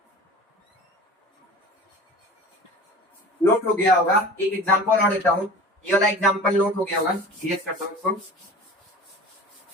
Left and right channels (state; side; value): normal; both; correlation 0.38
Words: नोट हो गया होगा। एक एग्जांपल और देता हूँ, ये वाला एग्जांपल नोट हो गया होगा। सीरियस करता हूँ इसको।